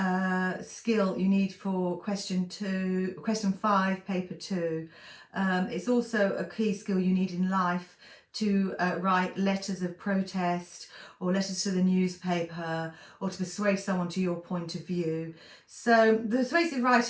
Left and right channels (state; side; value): identical; both; correlation 1.00